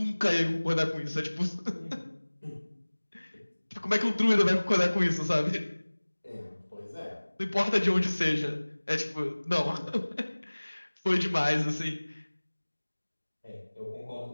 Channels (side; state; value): both; inverted; correlation -1.00